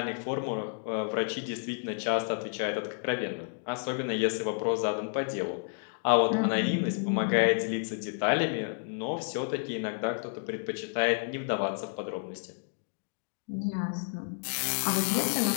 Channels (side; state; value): right; silent; digital silence